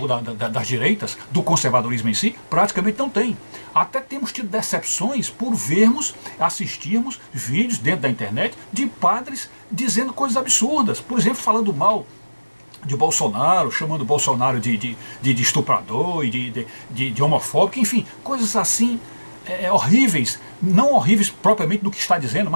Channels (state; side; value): inverted; both; correlation -1.00